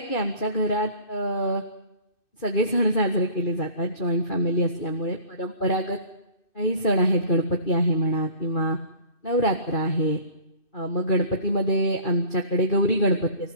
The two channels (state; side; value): late; right; 2.6 ms